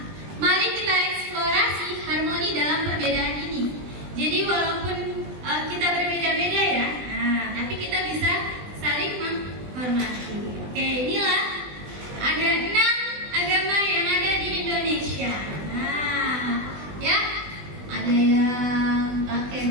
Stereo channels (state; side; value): late; left; 20 ms